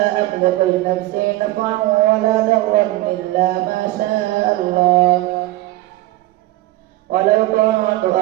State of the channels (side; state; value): left; quieter; 17.3 dB